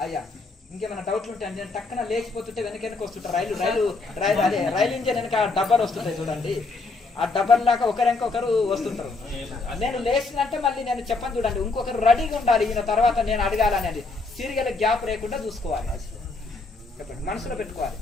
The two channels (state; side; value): quieter; right; 3.7 dB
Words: అయ్యా ఇంకేమైనా డౌట్లు ఉంటే అంటే టక్కన లేచిపోతుంటే వెనక వస్తుంటారు. రైలు ఇంజన్ వెనక డబ్బాలు వస్తుంటాయి చూడండి, ఆ డబ్బర్ లాగా ఒకరు వస్తుంటారు. నేను లేచినంటే మళ్ళీ నేను చెప్పను చూడండి, ఇంకొకరు రెడీగా ఉండాలి ఈయన తర్వాత నేను అడగాలనేది. సీరియల్ గ్యాప్ లేకుండా చూసుకోవాలి, చెప్పండి, మనసులో పెట్టుకోవాలి.